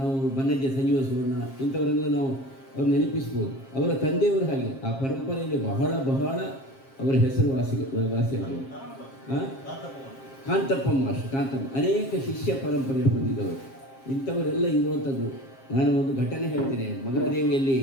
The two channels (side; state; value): right; late; 7.5 ms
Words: ಬನ್ನಜ್ಜ ಸಂಜೀವ ಸುವರ್ಣ ಇಂಥವರೆಲ್ಲ ನಾವು ಅವ್ರು ನೆನಪಿಸ್ಬೋದು. ಅವರ ತಂದೆಯವರು ಹಾಗೆ ಆ ಪರಂಪರೆಯಲ್ಲಿ ಬಹಳ ಅವರ ಹೆಸರು ವಾಸಿಯಾದರು. ಕಾಂತಪ್ಪ ಅನೇಕ ಶಿಷ್ಯ ಪರಂಪರೆ ಹೊಂದಿದವರು. ಇಂಥವರೆಲ್ಲ ಇರುವಂಥದ್ದು. ನಾನು ಒಂದು ಘಟನೆ ಹೇಳ್ತೇನೆ. ಮಗಳಾದೇವಿಯಲ್ಲಿ